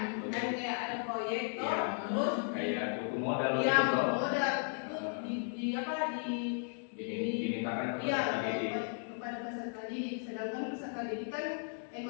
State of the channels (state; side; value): silent; right; 54 dB below the other